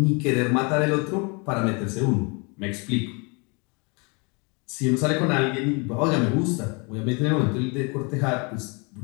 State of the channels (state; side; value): quieter; right; 31.8 dB